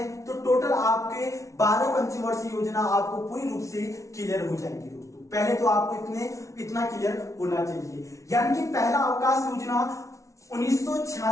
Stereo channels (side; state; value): right; late; 0.15 ms